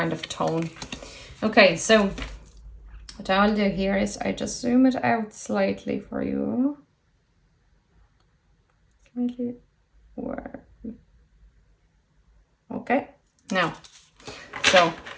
of tone. Okay, so what I'll do here is I just zoom it out slightly for you. Slightly where? Okay, now, so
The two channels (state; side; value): identical; both; correlation 1.00